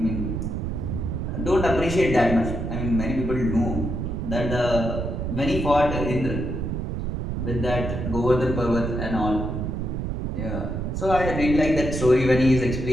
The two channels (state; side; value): noise; right; rumble, 3 dB below the sound